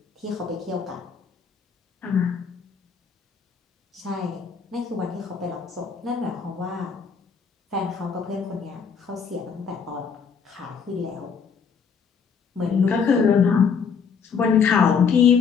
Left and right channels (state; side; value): quieter; right; 6.2 dB